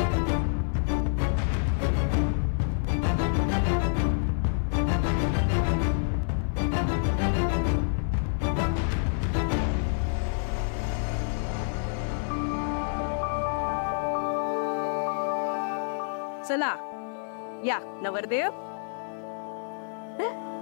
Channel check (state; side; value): silent; right; 56 dB below the other